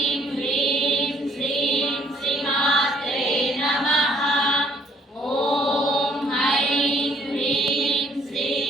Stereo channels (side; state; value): both; normal; correlation 0.64